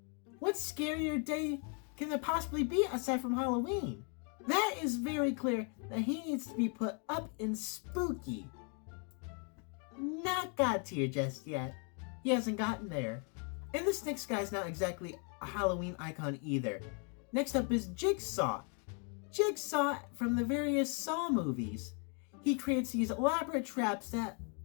What scarier day can there possibly be aside from Halloween? That is very clear that he needs to be put up in spooky. Not God tier just yet. He hasn't gotten there. And this next guy's not exactly a Halloween icon either. Next up is Jigsaw. Jigsaw from the various Saw movies. He creates these elaborate traps that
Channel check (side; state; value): right; quieter; 39.0 dB